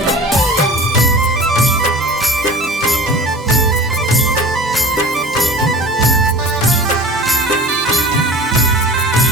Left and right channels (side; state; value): both; normal; correlation 0.40